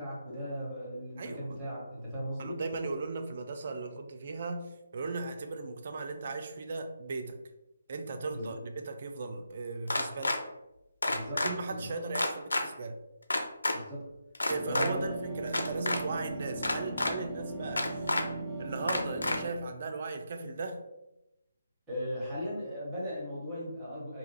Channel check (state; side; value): inverted; both; correlation -0.82